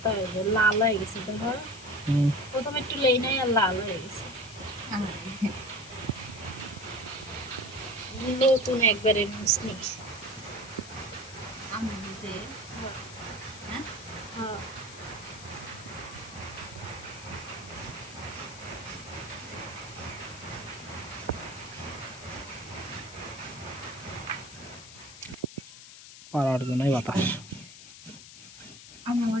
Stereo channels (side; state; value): left; noise; hiss, 16 dB below the sound